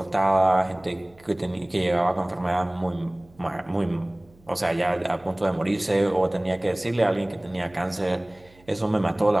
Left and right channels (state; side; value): noise; right; hum, 28 dB below the sound